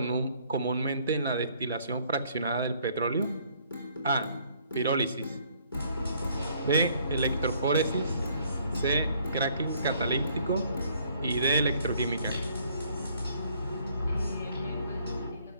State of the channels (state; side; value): inverted; both; correlation -0.64